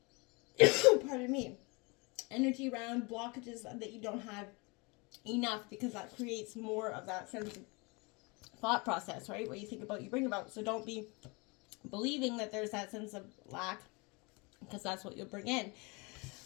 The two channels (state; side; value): quieter; right; 28.3 dB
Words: pardon me, energy around blockages that you don't have enough, because that creates more of that sense of thought process, right? What you think about, you bring about. So don't be believing that there's that sense of lack, because that's what you'll bring in.